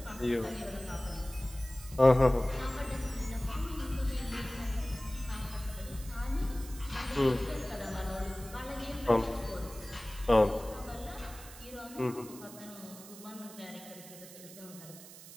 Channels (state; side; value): noise; right; hiss, 16 dB below the sound